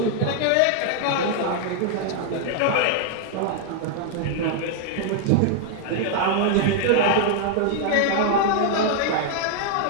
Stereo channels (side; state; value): both; different; correlation 0.00